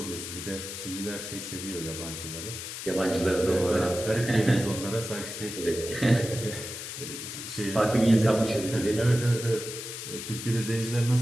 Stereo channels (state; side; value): noise; left; hiss, 8 dB below the sound